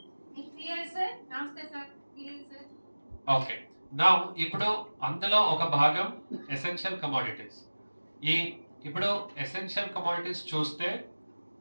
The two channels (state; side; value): inverted; both; correlation -1.00